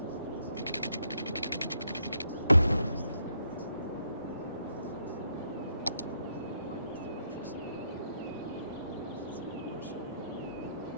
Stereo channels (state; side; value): inverted; both; correlation -0.75